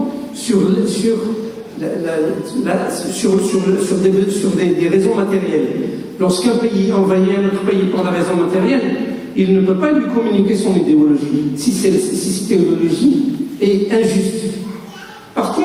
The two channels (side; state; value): both; identical; correlation 1.00